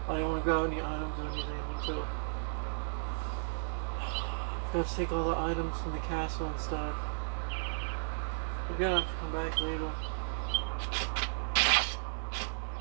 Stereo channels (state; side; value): silent; left; digital silence